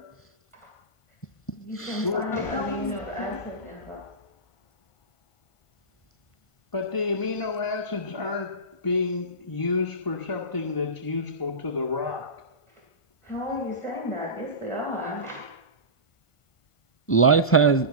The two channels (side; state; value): right; late; 1.5 ms